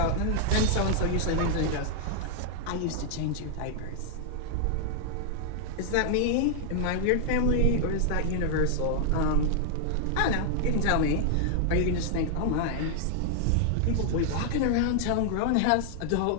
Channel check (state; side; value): different; both; correlation 0.00